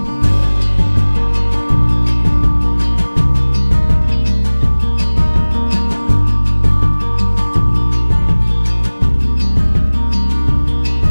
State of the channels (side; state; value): both; inverted; correlation -1.00